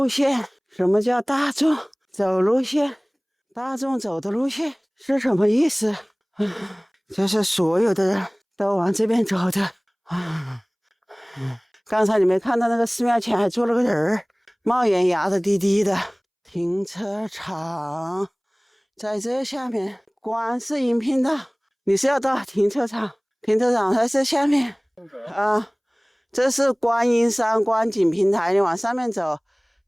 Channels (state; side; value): identical; both; correlation 1.00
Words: 线。什么叫大众走路线？大众走的路线是什么意思？这是所有的人都往这边走的。刚才你没看到那个寺庙前还坐了个人，冒烟压的低低的。停车场在这下面，观世音频道。你是要到停车场？停车场在这下面啊。这是观音山观景平台，你往上面走，